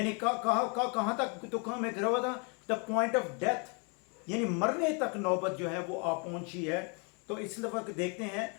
कहाँ तक दुखों में घिरा हुआ था? द पॉइंट ऑफ डेथ, यानी मरने तक नौबत जो है वो आ पहुंची है। तो इस वक्त देखते हैं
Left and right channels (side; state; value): right; quieter; 35.4 dB